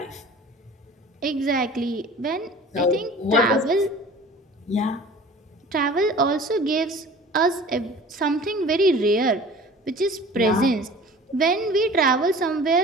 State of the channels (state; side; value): normal; both; correlation 0.43